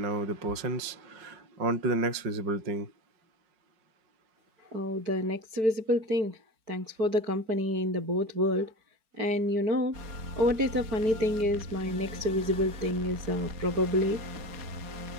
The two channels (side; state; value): left; late; 4.8 ms